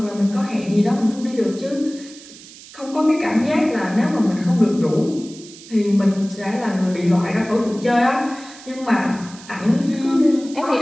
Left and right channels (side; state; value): right; noise; hiss, 19 dB below the sound